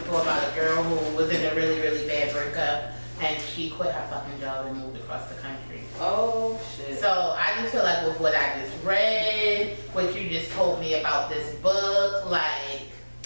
about a girl who was in a really, really bad breakup, and she quit her fucking job and moved across the country. Oh, shit. So I just feel like with what I just read, what you just told me about this book, like,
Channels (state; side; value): inverted; both; correlation -1.00